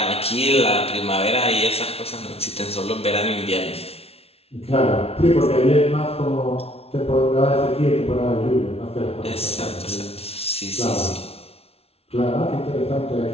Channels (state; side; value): late; right; 0.29 ms